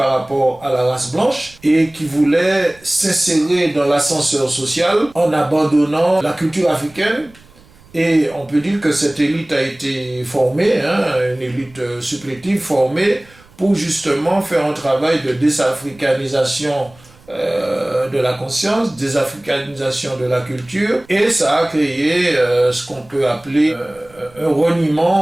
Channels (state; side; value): noise; right; rumble, 27 dB below the sound